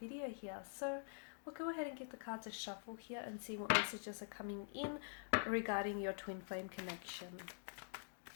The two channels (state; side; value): silent; right; digital silence